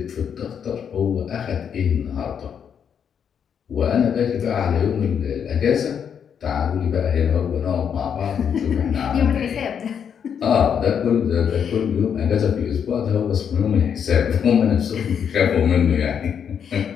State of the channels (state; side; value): quieter; right; 7.8 dB